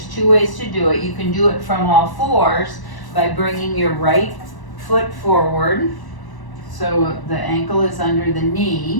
2 ways to do it. You can do it from all fours by bringing your right foot forward, so the ankle is under the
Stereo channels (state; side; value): late; right; 1.0 ms